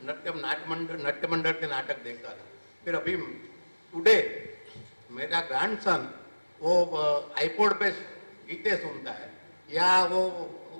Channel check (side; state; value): both; inverted; correlation -1.00